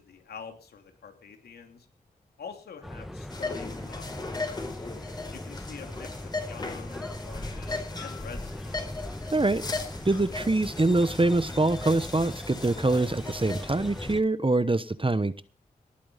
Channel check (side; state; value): both; normal; correlation 0.79